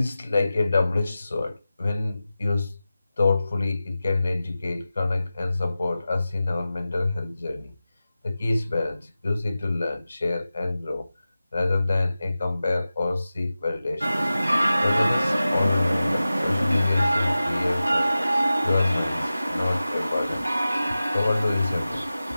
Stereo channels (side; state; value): both; inverted; correlation -0.95